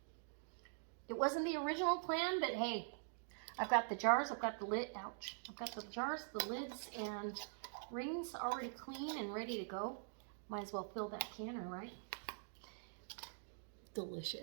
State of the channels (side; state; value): left; silent; digital silence